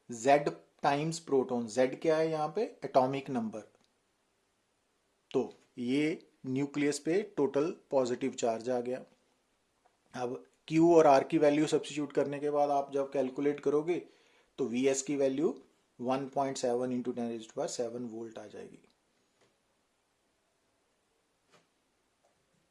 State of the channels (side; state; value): both; identical; correlation 1.00